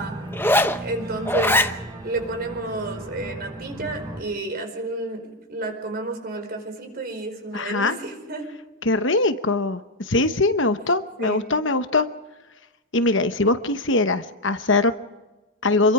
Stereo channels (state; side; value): normal; both; correlation 0.08